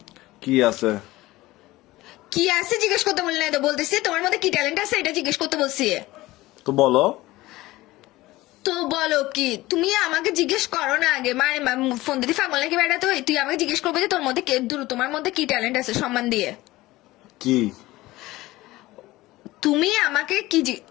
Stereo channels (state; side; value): quieter; right; 18.4 dB